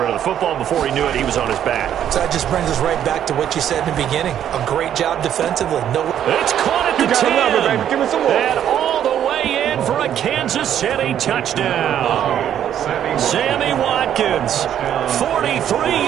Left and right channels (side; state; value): left; quieter; 10.2 dB